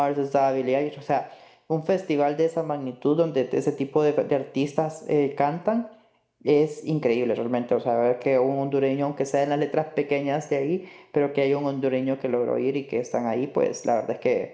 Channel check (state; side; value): identical; both; correlation 1.00